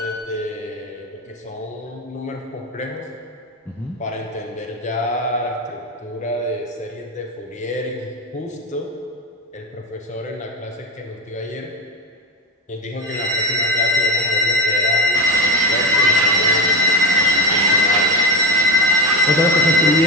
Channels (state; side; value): normal; both; correlation 0.17